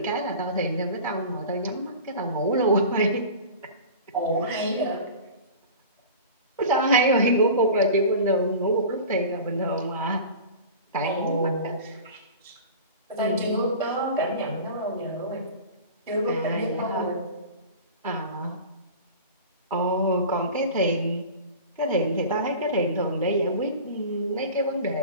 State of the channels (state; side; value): inverted; both; correlation -0.36